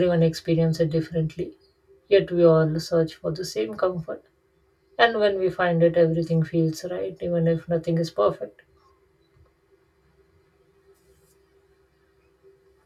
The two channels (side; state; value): both; identical; correlation 1.00